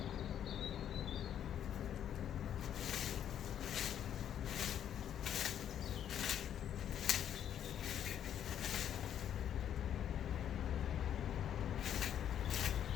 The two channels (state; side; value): quieter; right; 9.8 dB